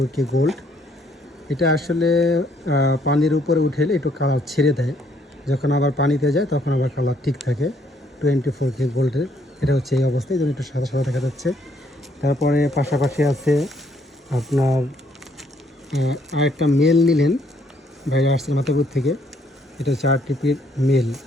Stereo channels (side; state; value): both; normal; correlation 0.68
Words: গোল্ড। এটা আসলে পানির উপরে উঠেলে একটু কালার ছেড়ে দেয়, যখন আবার পানিতে যায় তখন আবার কালার ঠিক থাকে। 24K গোল্ডের এটা হচ্ছে এই অবস্থায়, যেন একটু সাদা সাদা দেখা যাচ্ছে। তারপরে পাশাপাশি আছে আপনার আরেকটা মেল নিলেন বাইরে আসছে মাথাপুর থেকে। এটা হচ্ছে RTP-র মেল,